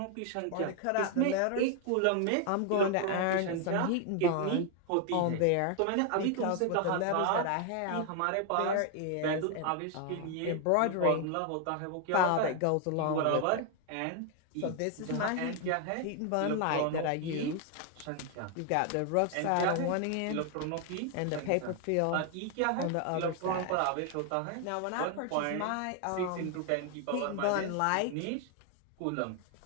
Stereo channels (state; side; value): different; both; correlation 0.00